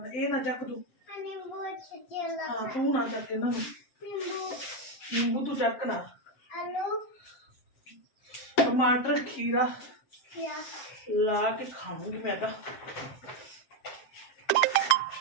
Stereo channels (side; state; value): right; late; 7.6 ms